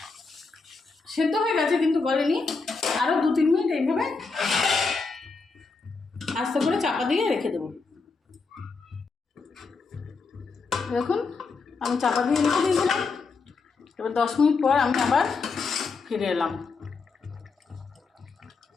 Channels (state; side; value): quieter; right; 4.4 dB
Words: সেদ্ধ হয়ে গেছে কিন্তু গলেনি, আরও 2-3 মিনিট এইভাবে আস্তে করে চাপা দিয়ে রেখে দেবো। দেখুন আমি চাপা দিয়ে রেখে দিয়েছিলাম। এবার 10 মিনিট পর আমি আবার ফিরে এলাম।